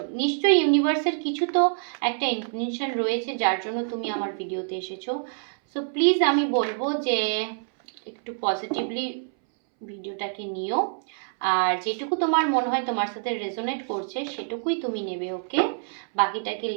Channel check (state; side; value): silent; left; 61 dB below the other